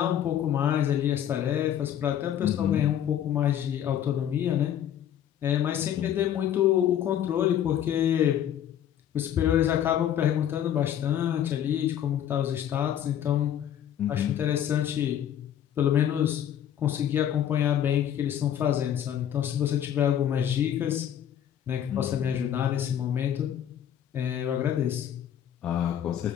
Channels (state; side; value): quieter; right; 10.2 dB